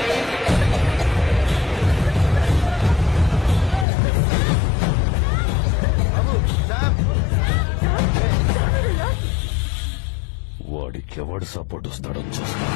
వాడికి ఎవడు సపోర్ట్ వస్తాడో చూస్తా.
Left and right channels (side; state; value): right; drops out; at 3.9 s